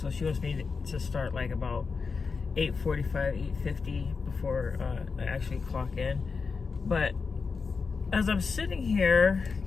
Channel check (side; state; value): right; quieter; 4.9 dB